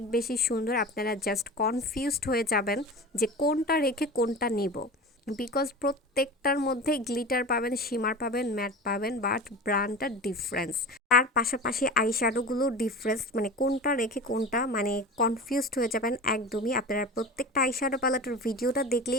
বেশি সুন্দর, আপনারা জাস্ট কনফিউজড হয়ে যাবেন যে কোনটা রেখে কোনটা নিব, বিকজ প্রত্যেকটার মধ্যে গ্লিটার পাবেন, শিমার পাবেন, ম্যাট পাবেন, বাট ব্র্যান্ডটা ডিফারেন্স। তার পাশাপাশি আইশ্যাডোগুলো ডিফারেন্স, মানে কোনটা রেখে কোনটা, মানে কনফিউজড হয়ে যাবেন একদমই। আপনারা প্রত্যেকটা আইশ্যাডো প্যালেটের ভিডিওটা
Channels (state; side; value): normal; both; correlation 0.32